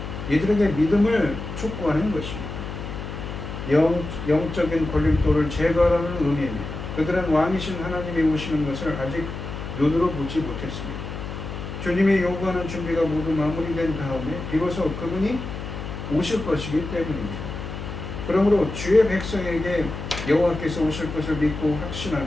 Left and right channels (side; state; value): left; noise; hum, 8 dB below the sound